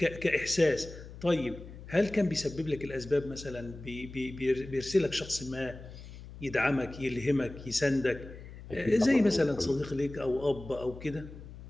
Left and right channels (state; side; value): noise; left; hum, 15 dB below the sound